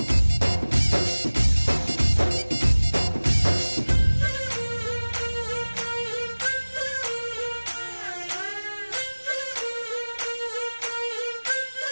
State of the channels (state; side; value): inverted; both; correlation -1.00